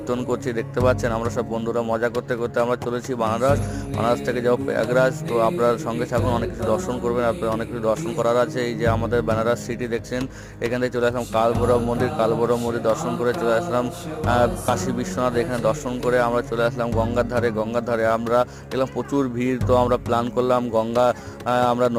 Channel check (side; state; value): both; identical; correlation 1.00